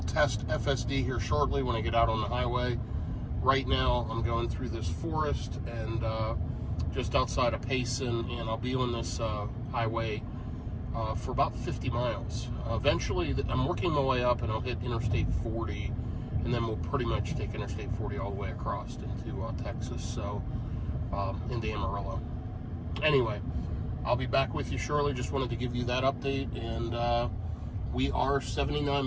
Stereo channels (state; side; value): identical; both; correlation 1.00